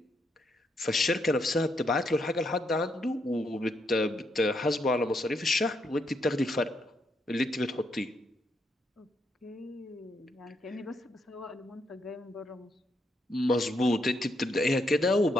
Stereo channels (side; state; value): both; normal; correlation 0.77